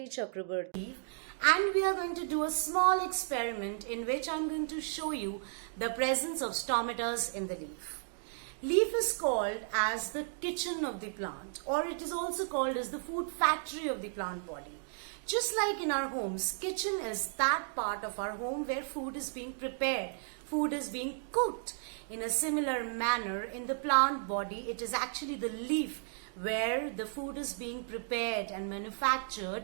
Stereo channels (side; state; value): left; silent; digital silence